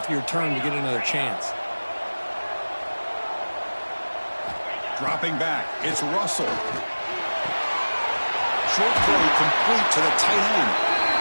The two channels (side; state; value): both; inverted; correlation -1.00